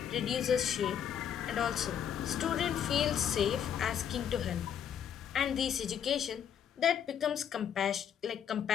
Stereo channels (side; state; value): right; quieter; 8.8 dB